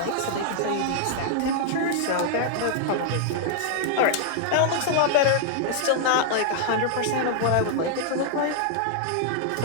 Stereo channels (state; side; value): different; both; correlation -0.01